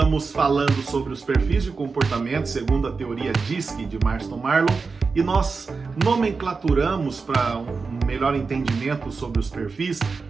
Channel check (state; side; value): quieter; left; 4.6 dB